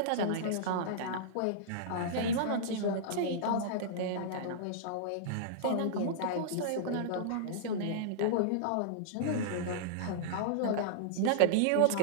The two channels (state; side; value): different; both; correlation -0.02